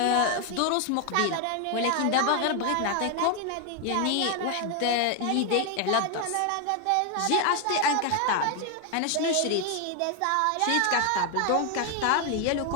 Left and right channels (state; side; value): different; both; correlation 0.01